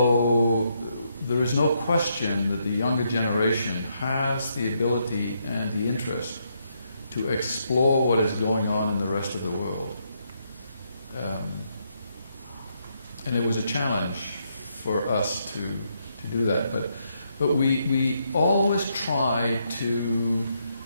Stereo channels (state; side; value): inverted; both; correlation -0.77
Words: there is no question that the younger generation has the ability and the interest to explore what is going on in the rest of the world. And it was a challenge for us to do that. But we always try to